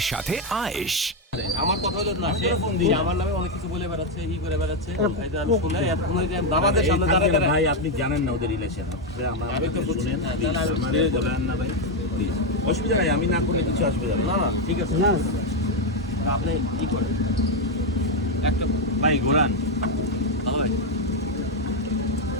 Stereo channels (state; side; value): normal; both; correlation 0.04